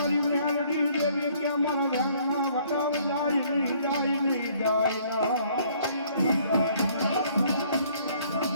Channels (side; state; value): both; inverted; correlation -0.61